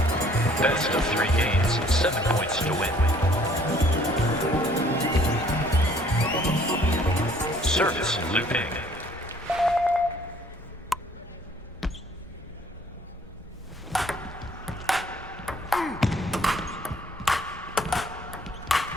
Best of 3 games, 7 points to win. Service Luping.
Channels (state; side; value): normal; both; correlation 0.59